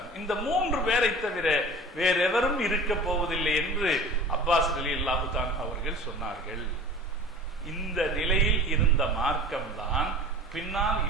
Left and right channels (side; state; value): both; normal; correlation 0.39